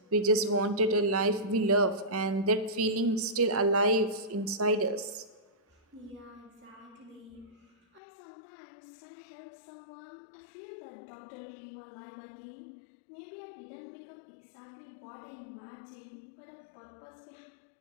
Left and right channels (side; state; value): right; drops out; at 8.0 s